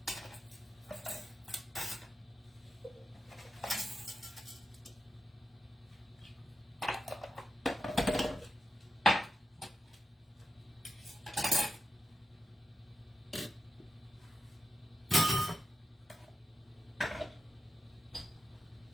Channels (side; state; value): both; normal; correlation 0.89